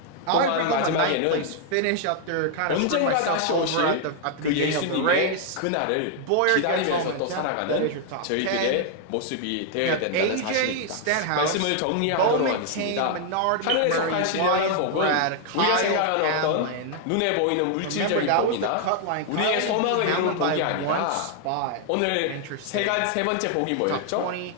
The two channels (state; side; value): different; both; correlation 0.00